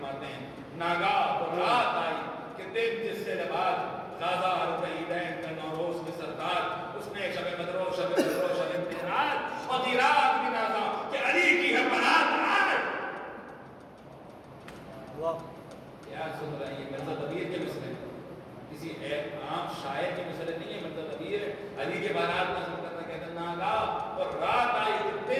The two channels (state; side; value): identical; both; correlation 1.00